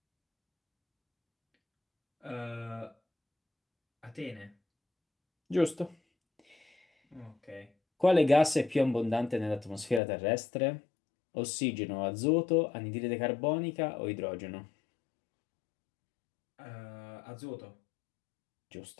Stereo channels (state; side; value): drops out; right; at 10.0 s